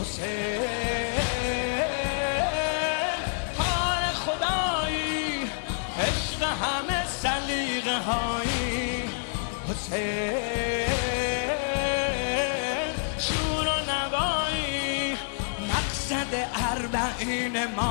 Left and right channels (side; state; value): right; silent; digital silence